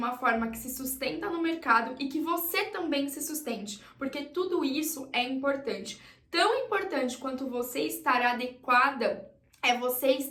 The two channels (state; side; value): identical; both; correlation 1.00